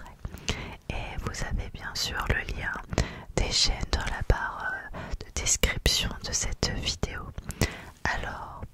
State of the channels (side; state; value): both; identical; correlation 1.00